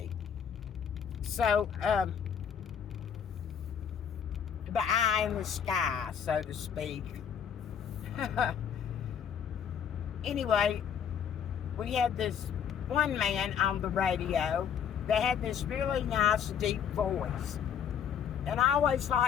So, the eye in the sky, so to speak. Anyway, we had this one man on the radio that had this really nice deep voice. And I always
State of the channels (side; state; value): right; quieter; 7.9 dB